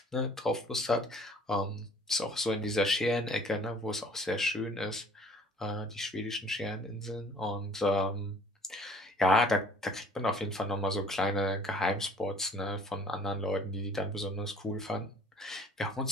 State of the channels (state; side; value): normal; both; correlation 0.53